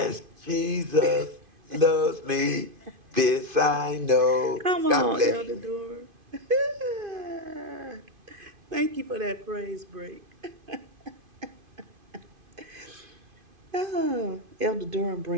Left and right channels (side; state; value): left; late; 2.5 ms